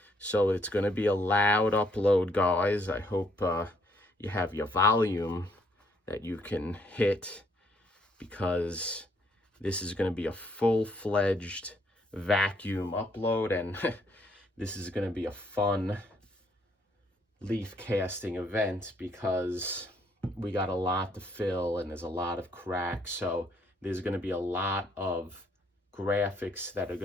So it's gonna be a loud upload, guys. I hope you have your volume that you can hit, because this is gonna be a full-fledged vacuum upload, and this is gonna be a fun leaf casting event because we got a lot to fill and there's a lot of cracks. So there's gonna be a lot of graphics that are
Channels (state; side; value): normal; both; correlation 0.69